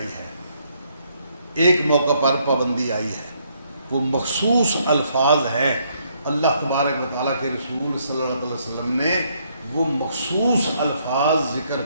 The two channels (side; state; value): both; inverted; correlation -0.71